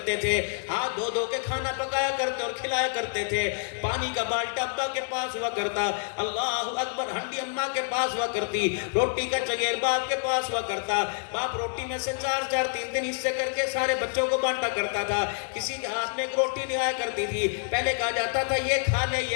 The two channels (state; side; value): silent; right; digital silence